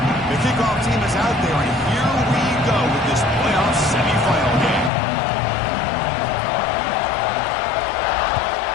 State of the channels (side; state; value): right; drops out; at 4.9 s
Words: Kickoff team is out there, and here we go with this playoff semifinal game.